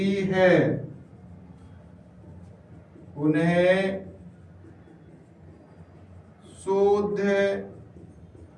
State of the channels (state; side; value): identical; both; correlation 1.00